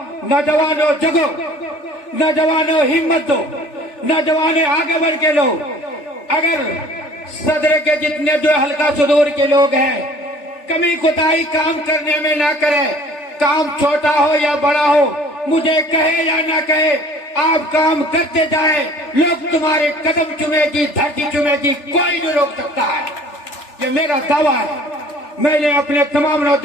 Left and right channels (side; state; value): right; late; 3.4 ms